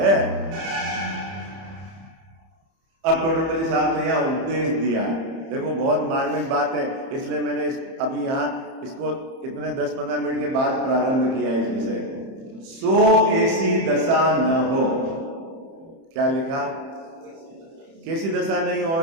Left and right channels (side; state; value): left; late; 30 ms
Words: अब टोडरमल साहब ने यहाँ उपदेश दिया। देखो बहुत मार्मिक बात है, इसलिए मैंने अभी यहाँ इसको इतने 10-15 मिनट के बाद प्रारंभ किया है इस विषय को। सो ऐसी दशा न हो। क्या लिखा? कैसी दशा नहीं